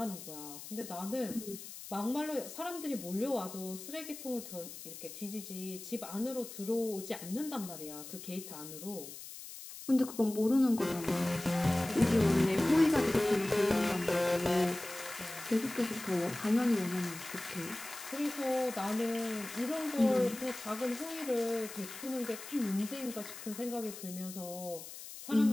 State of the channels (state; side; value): noise; left; hiss, 12 dB below the sound